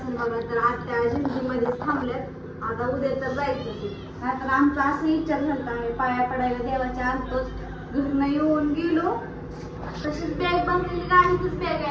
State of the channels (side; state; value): both; identical; correlation 1.00